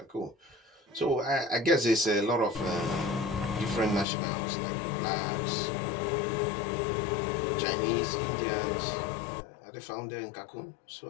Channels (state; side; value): drops out; right; at 4.0 s